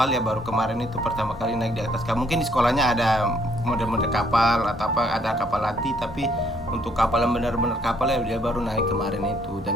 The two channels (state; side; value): normal; both; correlation 0.67